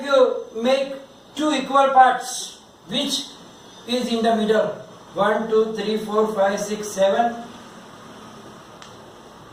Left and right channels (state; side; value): identical; both; correlation 1.00